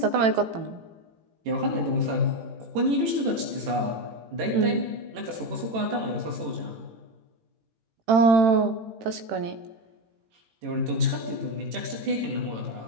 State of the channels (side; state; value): left; late; 18 ms